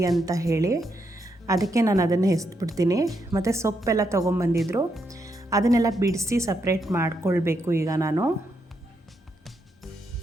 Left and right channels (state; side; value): normal; both; correlation 0.80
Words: ಅಂತ ಹೇಳಿ. ಅದಕ್ಕೆ ನಾನು ಅದನ್ನು ಎಸ್ಬಿಡ್ತೀನಿ. ಮತ್ತು ಸೊಪ್ಪೆಲ್ಲ ತೊಗೊಂಬಂದಿದ್ರು, ಅದನ್ನೆಲ್ಲ ಬಿಡಿಸಿ ಸಪ್ರೇಟ್ ಮಾಡ್ಕೊಳ್ಬೇಕು. ಈಗ ನಾನು